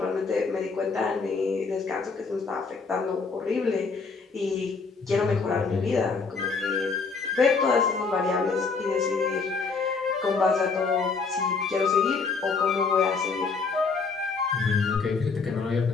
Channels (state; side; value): quieter; right; 4.7 dB